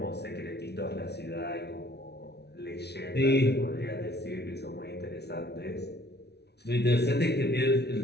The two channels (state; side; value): late; right; 0.49 ms